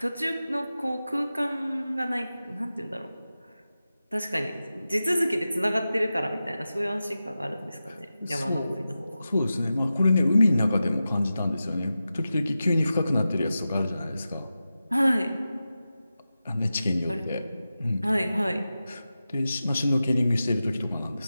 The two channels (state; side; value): inverted; both; correlation -0.93